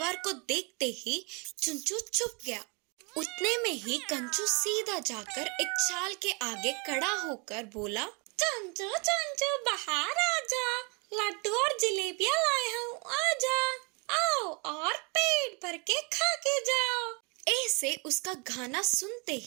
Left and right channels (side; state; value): left; quieter; 31.9 dB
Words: को देखते ही चुंचू चुप गया। उतने में ही कंचू सीधा जाकर एक चाल के आगे खड़ा होकर बोला, चंचू चंचू बाहर आजा, लड्डू और जलेबियां लाया हूँ, आजा, आओ और पेट भर के खा के जाओ। ऐसे उसका गाना सुनते